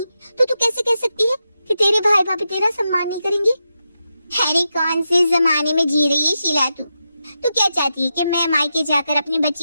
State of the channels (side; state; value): both; inverted; correlation -0.88